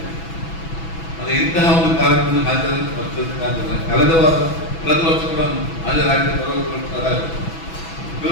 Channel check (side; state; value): right; late; 6.1 ms